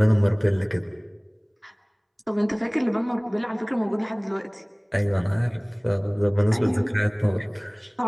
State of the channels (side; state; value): both; identical; correlation 1.00